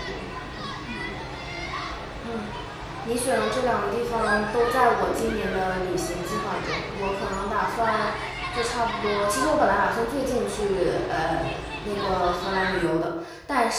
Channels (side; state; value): both; identical; correlation 1.00